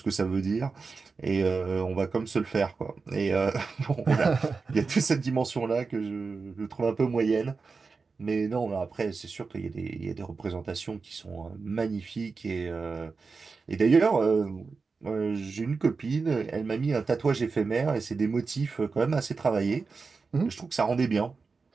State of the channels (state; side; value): quieter; left; 4.5 dB